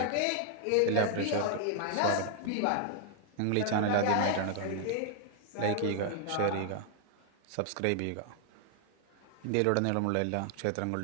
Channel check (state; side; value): different; both; correlation 0.00